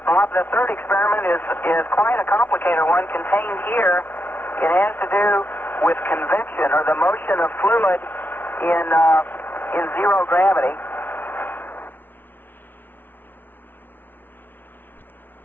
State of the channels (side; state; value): right; late; 0.094 ms